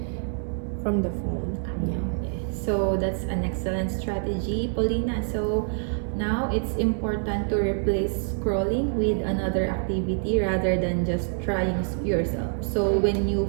from the phone. Yeah. So that's an excellent strategy, Paulina. So now it's important to replace scrolling with another activity rather than just trying yourself. So when you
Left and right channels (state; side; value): silent; left; 61 dB below the other